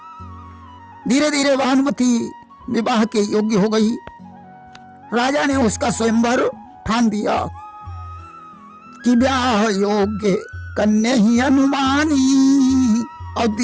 धीरे धीरे भानुमति विवाह के योग्य हो गई। राजा ने उसका स्वयंवर ठान दिया कि ब्याह योग्य कन्या ही अनुमानी, और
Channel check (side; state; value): both; identical; correlation 1.00